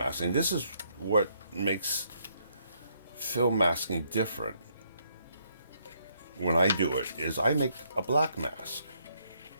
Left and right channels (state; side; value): inverted; both; correlation -0.72